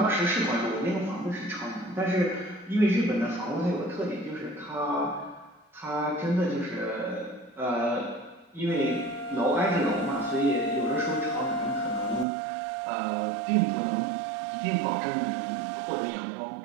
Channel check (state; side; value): drops out; left; at 12.2 s